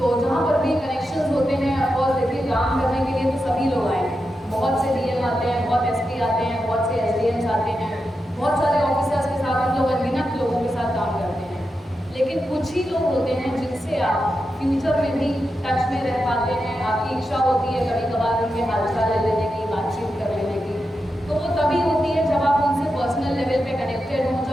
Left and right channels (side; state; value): both; normal; correlation 0.88